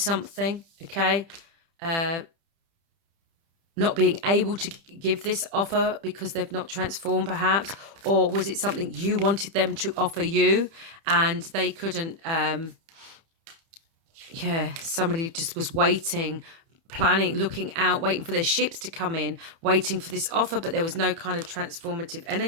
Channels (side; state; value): left; late; 30 ms